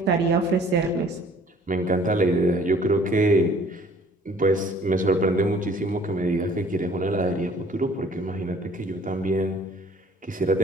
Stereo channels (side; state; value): both; normal; correlation 0.54